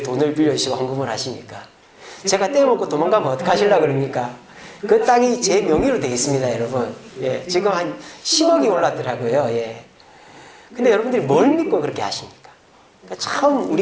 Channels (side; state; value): both; identical; correlation 1.00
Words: 돈을 빌려주시고 헌금을 하십니까? 제가 떼먹고 도망가면 어떡하시려고 그럽니까? 그 땅이 제 명의로 되어 있습니다, 여러분. 예, 지금 한 10억이 올랐더라고요. 예. 근데 여러분들이 뭘 믿고 그렇게 하십니까? 그러니까 참